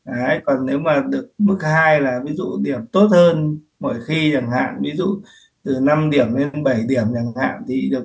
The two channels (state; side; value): identical; both; correlation 1.00